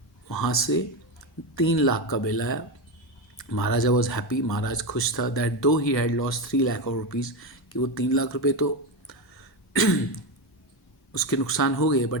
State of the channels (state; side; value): normal; both; correlation 0.13